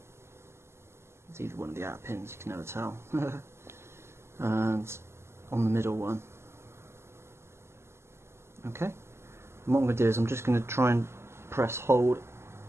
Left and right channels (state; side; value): late; left; 0.13 ms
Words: It's either one of the outer pins, you can never tell. And on the middle one. Okay. And what I'm going to do is I'm just going to try and press hold.